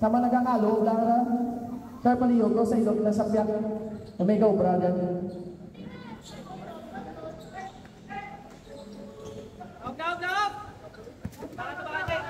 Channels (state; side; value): identical; both; correlation 1.00